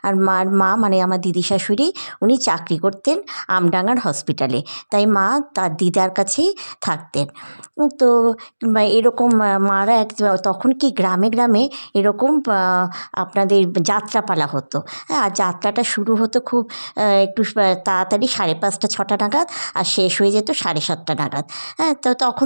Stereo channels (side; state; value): both; inverted; correlation -1.00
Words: আর মার মা মানে আমার দিদি শাশুড়ি, উনি চাকরি করতেন আমডাঙার হসপিটালে। তাই মা তার দিদার কাছেই থাকতেন। তো এরকম মারা তখন কি গ্রামে গ্রামে এরকম আপনাদের যাত্রাপালা হতো। হ্যাঁ, আর যাত্রাটা শুরু হতো খুব একটু তাড়াতাড়ি 5:30 6টা নাগাদ, আর শেষ হয়ে যেত 7:30 নাগাদ। হ্যাঁ, তো তখন